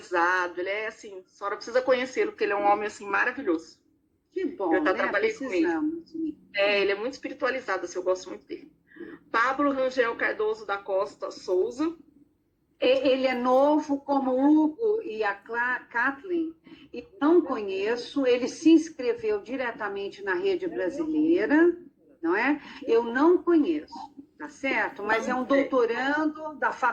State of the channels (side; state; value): both; identical; correlation 1.00